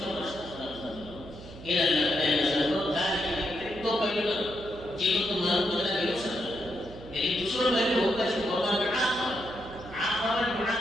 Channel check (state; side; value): noise; right; hum, 16 dB below the sound